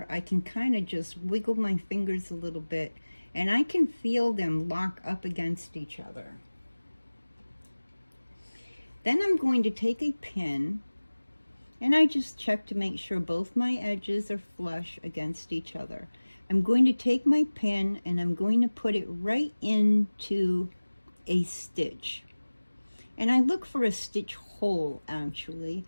I can kind of just wiggle my fingers a little bit, and I can feel them lock up against each other. Then I'm going to take a pin, and I just check to make sure both my edges are flush against each other. I'm going to take my pin and I'm going to put it right into a stitch. And I look for a stitch hole, actually.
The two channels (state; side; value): inverted; both; correlation -1.00